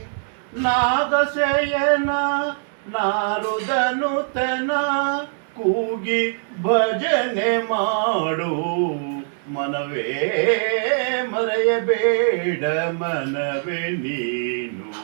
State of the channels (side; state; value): left; silent; digital silence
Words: ನಾಗಸೇಯನ ನಾರುದನುತನ ಕೂಗಿ ಭಜನೆ ಮಾಡು ಮನವೇ ಮರೆಯಬೇಡ ಮನವೇ ನೀನು